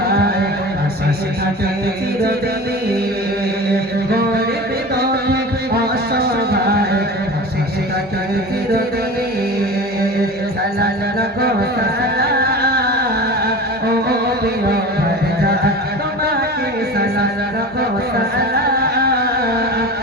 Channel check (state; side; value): normal; both; correlation 0.33